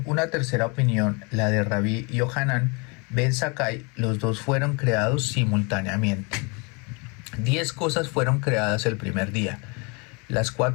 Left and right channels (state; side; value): quieter; right; 31.1 dB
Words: una tercera opinión, la de Rabí Yohanan ben Zakkai, los dos fueron creados simultáneamente. 10 cosas fueron creadas el primer día. Las